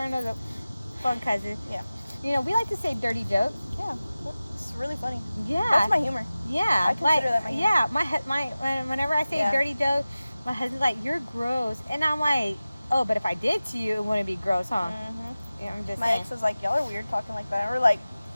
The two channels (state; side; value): inverted; both; correlation -0.96